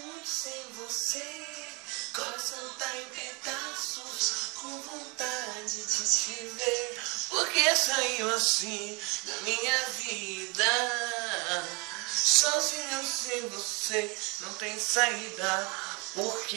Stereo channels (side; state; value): left; quieter; 29.5 dB